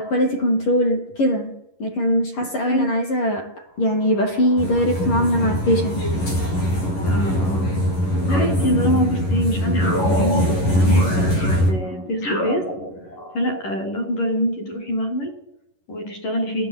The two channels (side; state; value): right; late; 11 ms